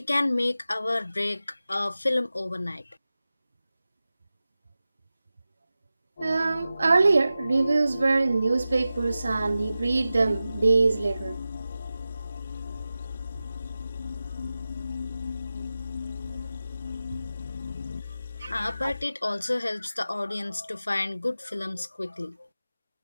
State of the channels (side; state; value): both; inverted; correlation -0.94